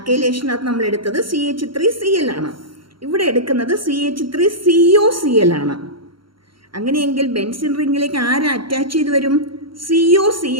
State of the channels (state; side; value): late; left; 0.73 ms